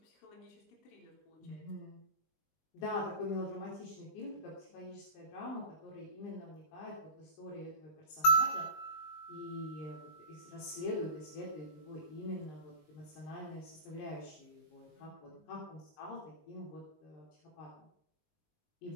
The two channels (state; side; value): late; right; 19 ms